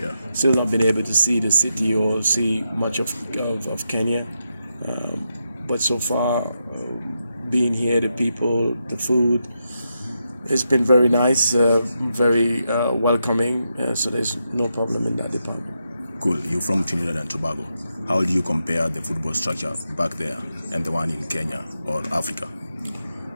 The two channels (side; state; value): both; inverted; correlation -0.85